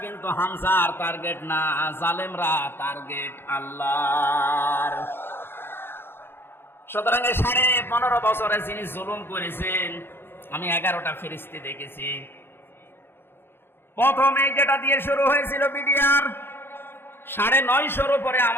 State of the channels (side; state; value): right; late; 0.11 ms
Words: কিন্তু হামজার টার্গেট না, জালেমরা টার্গেট আল্লাহর। সুতরাং 15.5 বছরে যিনি জুলুম করেছেন, আমি 11টা ফেরেশতা দেখেছি। প্রথমে যেটা দিয়ে শুরু হয়েছিল বিডিআর, 950 উপরে